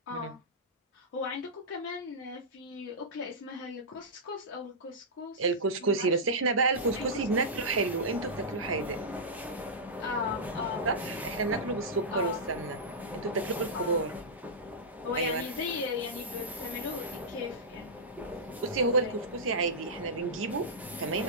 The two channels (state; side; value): normal; both; correlation -0.12